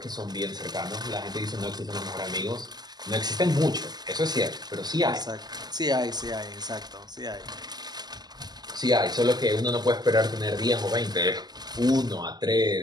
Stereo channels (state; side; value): late; left; 0.20 ms